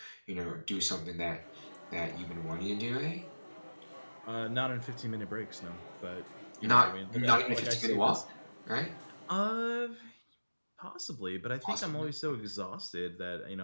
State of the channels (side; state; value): both; inverted; correlation -1.00